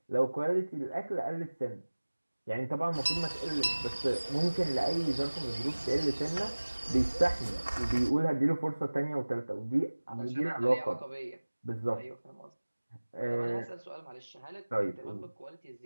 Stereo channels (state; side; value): inverted; both; correlation -1.00